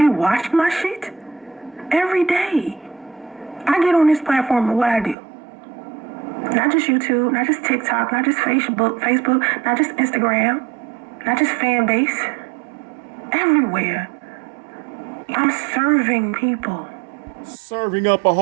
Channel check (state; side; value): drops out; left; at 5.2 s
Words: watch my shit every day. I get on this platform and what I do. Not just YouTube, not just TikTok, not just Facebook, not just Instagram, not just fan base. Everywhere. I'm serving people. Serving up a